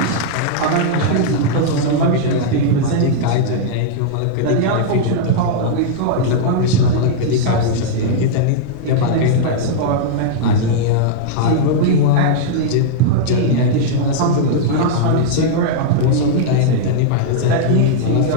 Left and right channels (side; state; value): both; different; correlation -0.01